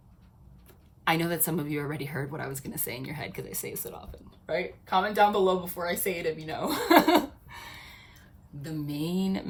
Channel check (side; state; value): both; identical; correlation 1.00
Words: I know that some of you already heard what I was going to say in your head, because I say it so often, right? Comment down below before I say it if you know. The main